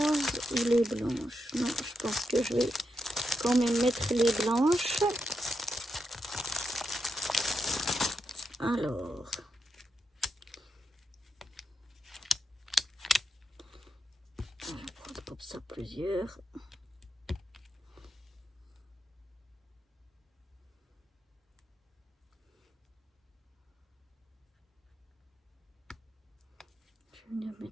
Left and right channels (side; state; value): both; normal; correlation 0.85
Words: ou les blanches? Non, je pense que je vais quand même mettre les blanches. Alors, je vais prendre comme ça plusieurs. Je vais venir